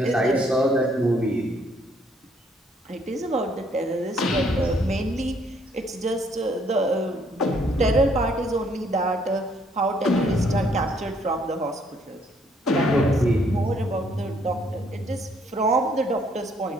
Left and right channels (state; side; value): normal; both; correlation 0.67